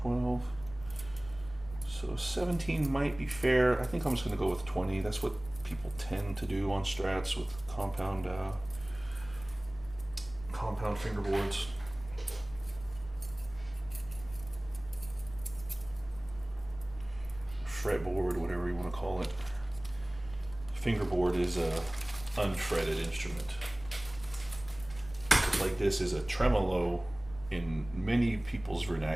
So 17 might be fair. I think I'm just gonna go with 20. That's what people tend to do on strats with compound fingerboards. Fretboard, whatever you want to call it. Fingerboard is a unfretted instrument. Like this is a tremolo in many people's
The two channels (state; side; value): noise; left; rumble, 17 dB below the sound